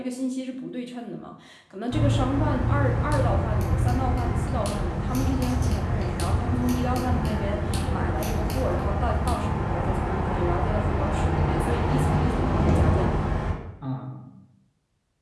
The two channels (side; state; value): both; identical; correlation 1.00